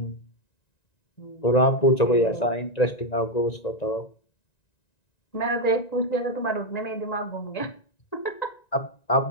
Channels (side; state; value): right; late; 1.9 ms